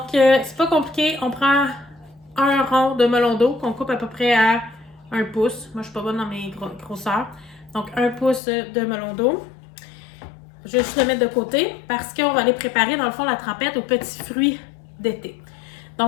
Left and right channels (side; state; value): right; drops out; at 8.4 s